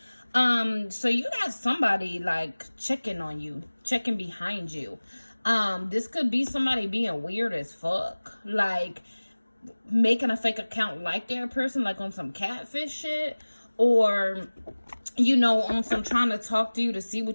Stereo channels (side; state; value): both; inverted; correlation -1.00